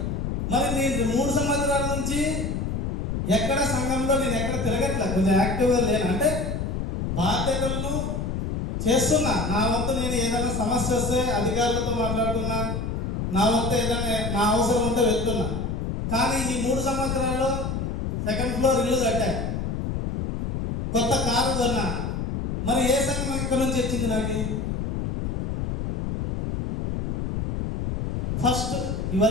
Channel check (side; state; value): left; noise; rumble, 2 dB below the sound